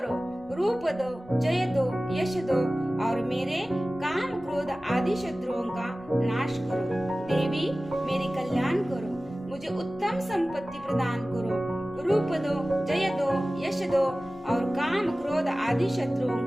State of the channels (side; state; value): both; normal; correlation 0.97